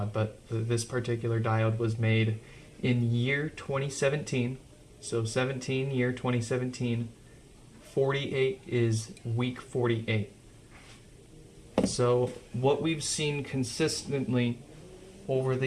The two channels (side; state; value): both; identical; correlation 1.00